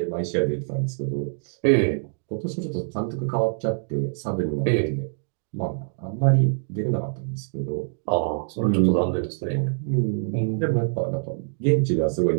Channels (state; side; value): silent; left; digital silence